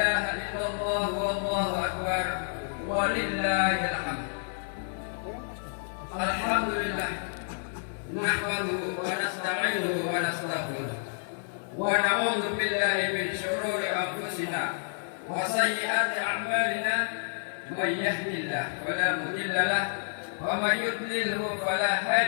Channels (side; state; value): right; silent; digital silence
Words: illallah wallahu akbar, walillahil hamd. Alhamdulillah, nahmaduhu wa nasta'inuhu wa nastaghfiruh wa na'udzu billahi min syururi anfusina wa sayyiati a'malina man yahdihillahu fala mudilla lahu wa man yudlilhu fala